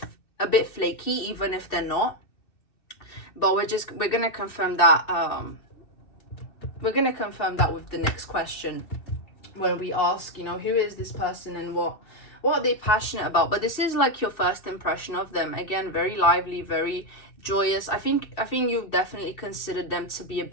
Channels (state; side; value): late; right; 2.6 ms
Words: flaky, even if they're not. But we're gonna confirm that. We're gonna confirm that with the next question, when we ask, you know, who is this person and what are they passionate about. But this is like your first impression of them. Again, very lively, very joyous. I think you definitely considered them to be a